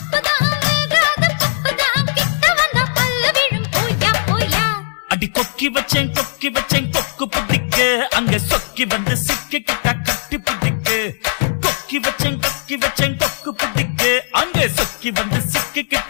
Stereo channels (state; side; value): silent; right; digital silence